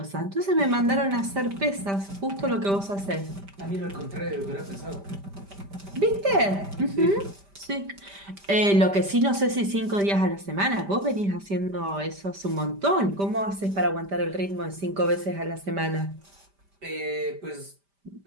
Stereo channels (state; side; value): late; left; 5.1 ms